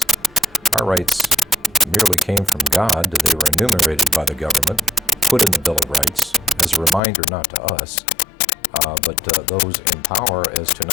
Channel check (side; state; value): right; drops out; at 7.0 s